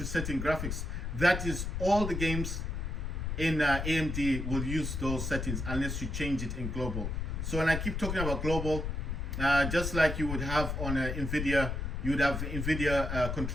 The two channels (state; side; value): noise; left; rumble, 3 dB below the sound